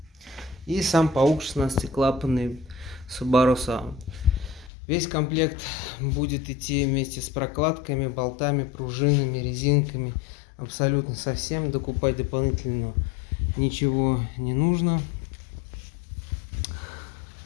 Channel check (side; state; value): right; drops out; at 4.7 s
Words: И сам паук 16-клапанный Subaru Sound. Весь комплект будет идти вместе с прокладками, болтами, пружинами, резинками. Абсолютно совсем. Докупать дополнительно ничего не нужно.